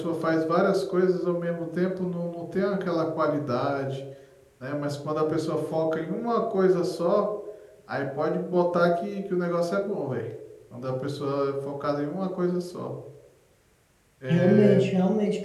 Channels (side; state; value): both; identical; correlation 1.00